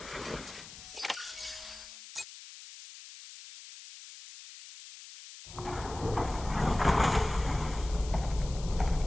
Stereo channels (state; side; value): noise; left; hiss, 15 dB below the sound